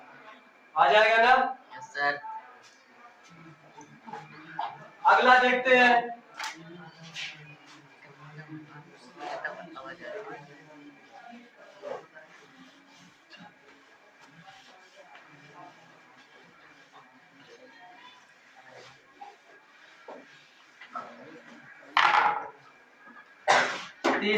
आ जाएगा ना? Yes sir. अगला देखते हैं।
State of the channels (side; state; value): both; identical; correlation 1.00